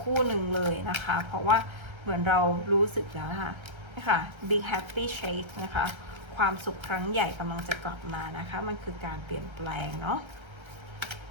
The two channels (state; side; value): late; left; 1.3 ms